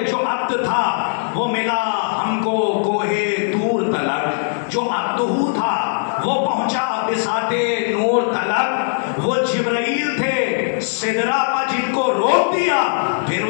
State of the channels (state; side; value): silent; right; 62 dB below the other